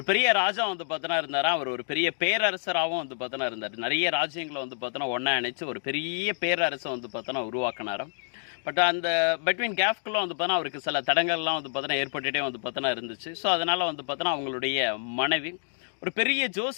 பெரிய ராஜா பார்த்தோன்னா இருந்தாரா. அவர் ஒரு பெரிய பேரரசராகவும் பார்த்தோன்னா இருந்தார். நிறைய ராஜ்யங்களை பார்த்தோன்னா ஒன்றா இணைச்சு ஒரு பெரிய பேரரசை பார்த்தோன்னா உருவாக்கினாராம். பட் அந்த பிட்வீன் கேஃப்குள்ளே பார்த்தோன்னா அவருக்கு சில தடங்கள்லாம் பார்த்தோன்னா ஏற்பட்டுகிட்டே பார்த்தோன்னா இருந்துச்சு. ஸோ அதனால் பார்த்தோன்னா அவங்களுடைய மனைவி ஒரு பெரிய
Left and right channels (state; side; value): silent; right; digital silence